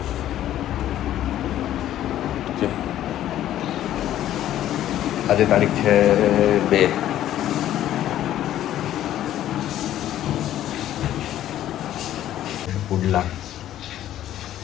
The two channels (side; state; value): right; quieter; 12.4 dB